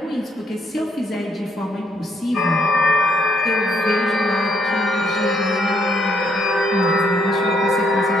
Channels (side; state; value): both; normal; correlation 0.72